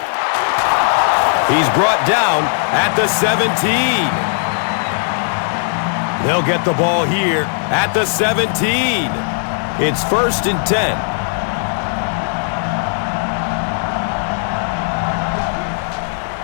He's brought down at the 17. They'll get the ball here at the 17. It's 1st and 10.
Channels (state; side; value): silent; right; digital silence